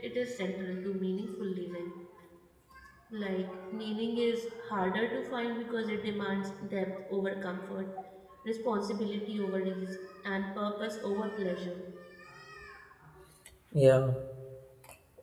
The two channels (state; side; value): identical; both; correlation 1.00